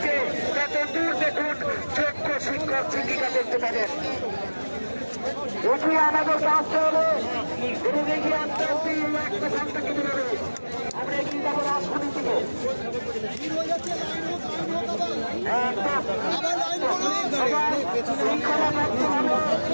তত দূর দেখুন যোগ্য শিক্ষক শিক্ষিকা দেখতে পাবেন। এগিয়ে আমাদেরকে আসতে হবে, এবং এগিয়ে আসতে আসতে একটা সংখ্যা কেটে যাবে। আমরা এগিয়ে যাবো রাজধানীর দিকে।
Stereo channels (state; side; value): inverted; both; correlation -1.00